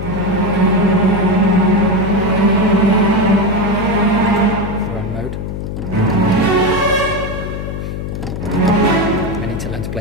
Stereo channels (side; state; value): left; noise; hum, 6 dB below the sound